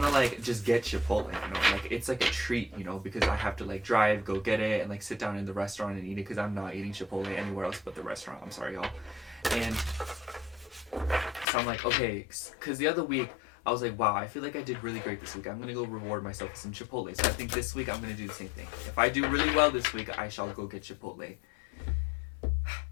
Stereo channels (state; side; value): drops out; right; at 11.5 s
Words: to like just get Chipotle, you know, like it's like a treat, you know, because I have to like drive, go get it, and like sit down in the restaurant and eat it, because I'm not eating Chipotle anywhere else but the restaurant. I'm sorry, y'all. And so I'm like, okay, because the other week I was like, wow, I feel like I did really great this week. I'm gonna go reward myself with some Chipotle. So I think this week I'm gonna do the same thing. If I do really well this week, I shall go get Chipotle.